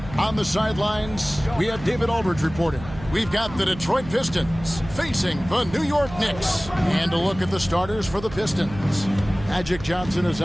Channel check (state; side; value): noise; right; hum, 14 dB below the sound